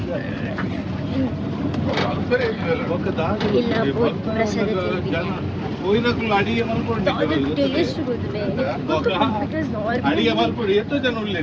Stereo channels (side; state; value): both; identical; correlation 1.00